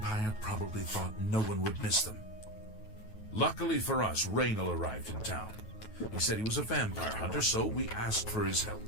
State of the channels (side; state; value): right; late; 9.3 ms